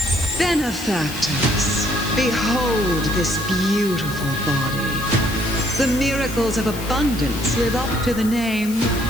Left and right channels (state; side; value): noise; left; hiss, 13 dB below the sound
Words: Benefactors, behold this beautiful body. The miracles of abundance live up to the name.